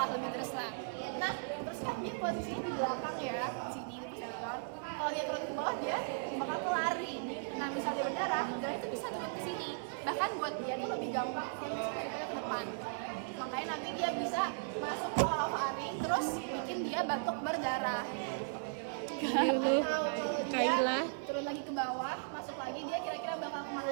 Nah, terus kan dia posisinya di belakang ya, sini posterior. Kalau dia turun ke bawah dia bakal kelari. Nah, misalnya dia berdarah, darah itu bisa turun ke sini. Bahkan buat dia tuh lebih gampang daripada ke depan. Makanya nanti dia bisa masuk ke paru-paru terus bikin dia batuk berdarah. Atau kalau dia turun lagi ke bawah, masuk lagi, dia kira-kira bakal kemana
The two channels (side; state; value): left; silent; 53 dB below the other